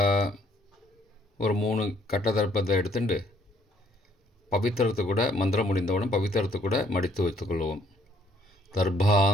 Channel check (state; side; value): normal; both; correlation 0.64